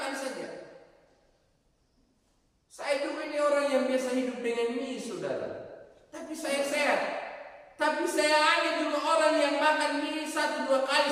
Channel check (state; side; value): identical; both; correlation 1.00